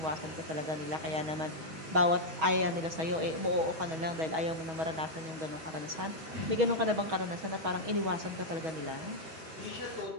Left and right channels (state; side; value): late; left; 6.2 ms